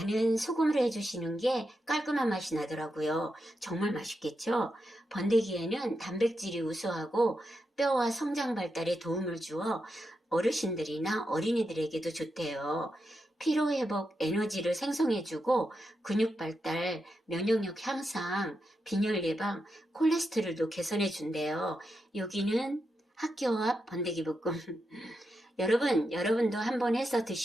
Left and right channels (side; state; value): both; normal; correlation 0.86